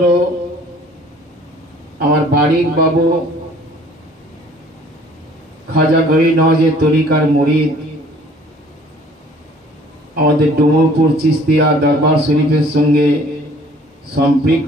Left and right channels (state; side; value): normal; both; correlation 0.55